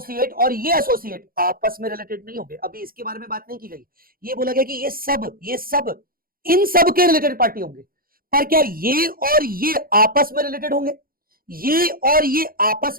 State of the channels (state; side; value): late; left; 0.42 ms